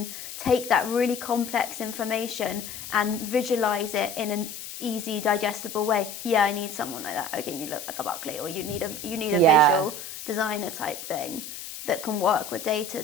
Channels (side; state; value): left; noise; hiss, 10 dB below the sound